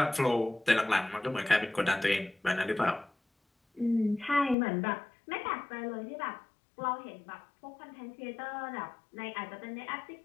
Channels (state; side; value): drops out; right; at 4.5 s